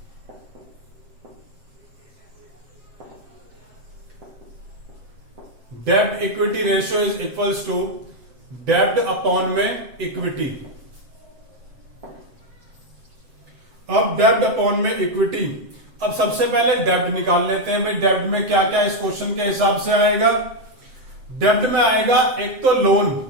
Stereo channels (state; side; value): late; left; 7.8 ms